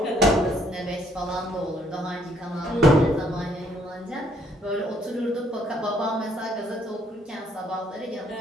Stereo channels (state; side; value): normal; both; correlation 0.67